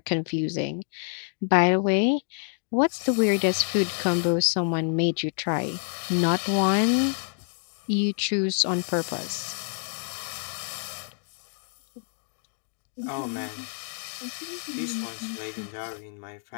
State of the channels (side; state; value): right; silent; 60 dB below the other